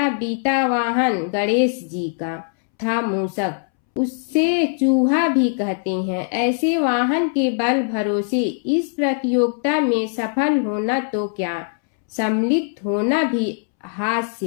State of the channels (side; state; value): right; silent; 65 dB below the other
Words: बीता वाहन गणेश जी का था मूषक, उससे चूहा भी कहते हैं। ऐसे वाहन के बल भरोसे इस प्रतियोगिता में सफल होना तो क्या, सम्मिलित होना भी